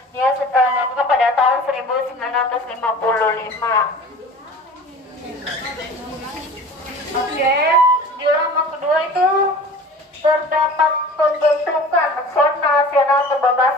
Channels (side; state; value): both; normal; correlation 0.41